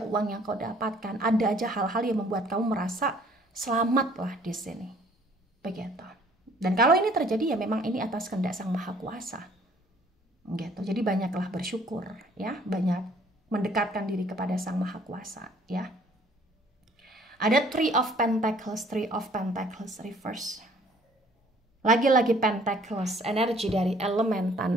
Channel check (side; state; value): both; normal; correlation 0.58